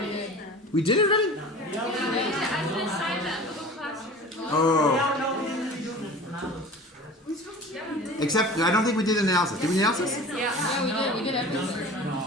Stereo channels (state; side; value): normal; both; correlation 0.39